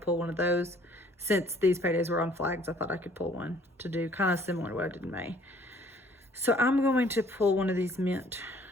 one of those. Since these paydays were on flags, I thought I could pull one to do kind of similar to what I did in May. So I'm going to pull one of these mint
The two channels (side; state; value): both; normal; correlation 0.58